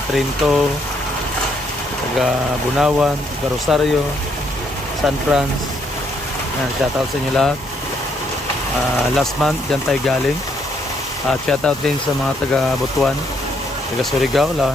Trinto, taga Bunawan, taga Rosario, San Franz. Shout out sa inyo lahat. Last month dyan tayo galing. Shout out din sa mga taga Butuan, taga Surigao, lalo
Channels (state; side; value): normal; both; correlation 0.72